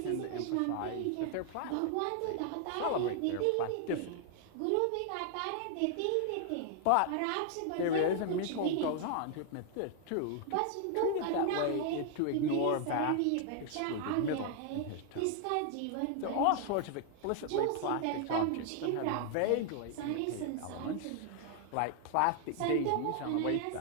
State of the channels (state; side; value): different; both; correlation 0.00